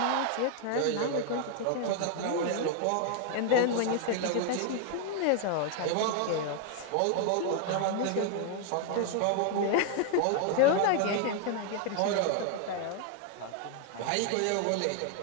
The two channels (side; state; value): both; different; correlation 0.00